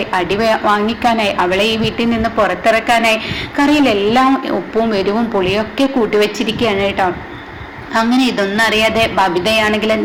അടി വാങ്ങിക്കാനായി അവളെ ഈ വീട്ടിൽ നിന്ന് പുറത്തിറക്കാനായി കറിയിലെല്ലാം ഉപ്പും എരിവും പുളിയൊക്കെ കൂട്ടിവെച്ചിരിക്കുകയാണ് കേട്ടോ. അങ്ങനെ ഇതൊന്നും അറിയാതെ ബബിതയാണെങ്കിൽ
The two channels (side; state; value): both; identical; correlation 1.00